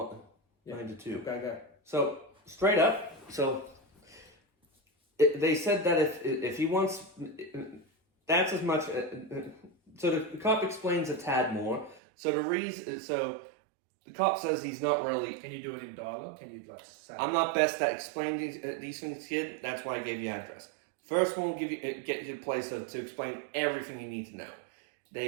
yeah. 9 to 2. Go. So straight up. So they said that if he wants, that's as much. So the cop explains a tad more. So the cop says he's not really. Can you do it in dialogue? Can you say? I'm not best at explaining these things, kid. That's why I gave you address. First one will get you to a place to explain everything you need to know.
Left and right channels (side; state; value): left; drops out; at 12.0 s